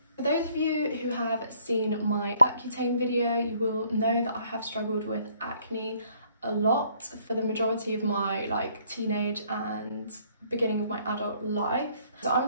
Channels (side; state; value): both; inverted; correlation -0.64